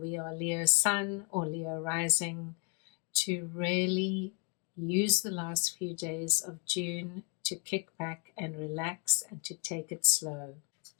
are Leo Sun or Leo Rising, to really use the last few days of June to kick back and relax and to take it slow.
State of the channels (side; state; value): right; quieter; 35.5 dB